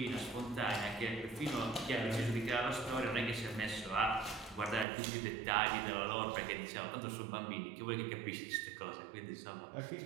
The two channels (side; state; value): left; drops out; at 4.9 s